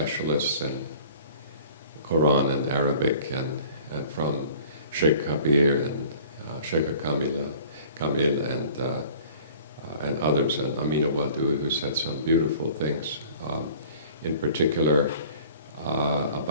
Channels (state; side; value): inverted; both; correlation -0.49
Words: in Quran and Arabic, and from Sheikh Kabir and Sheikh Kamil and others, and Amina Wadu, who said some beautiful things, in particular